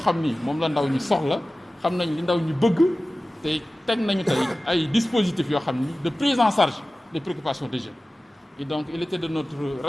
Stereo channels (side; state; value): both; normal; correlation 0.96